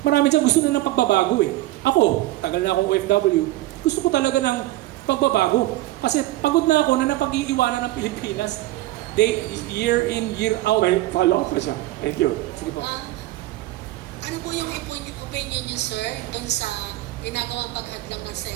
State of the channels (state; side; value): quieter; left; 17.0 dB